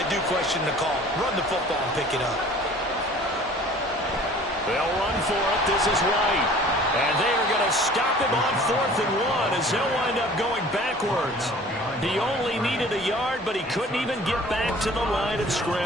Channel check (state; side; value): normal; both; correlation 0.48